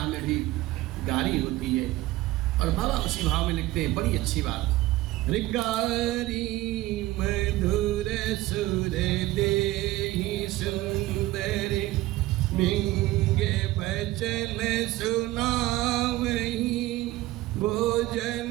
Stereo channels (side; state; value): left; quieter; 17.4 dB